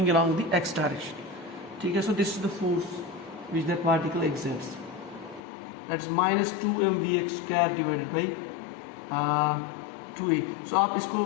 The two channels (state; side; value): drops out; right; at 5.4 s